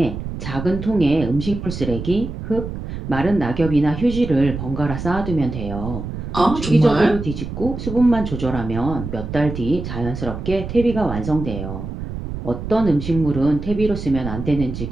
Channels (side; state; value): right; noise; rumble, 7 dB below the sound